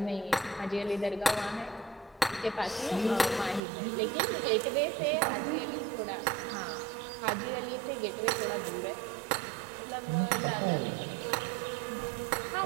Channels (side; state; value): left; drops out; at 3.6 s